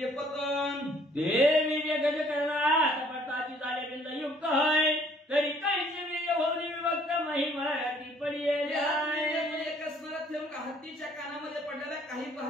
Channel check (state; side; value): normal; both; correlation 0.60